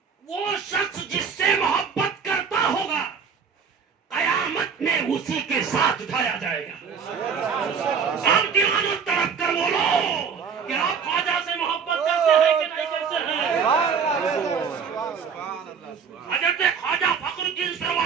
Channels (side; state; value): left; quieter; 6.4 dB